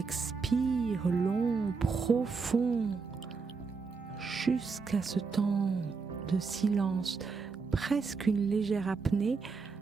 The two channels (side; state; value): left; quieter; 4.8 dB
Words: long, profond, jusqu'à ce temps de silence, presque une légère apnée,